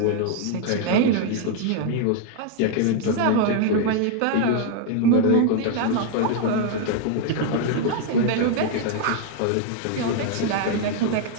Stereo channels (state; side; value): different; both; correlation 0.00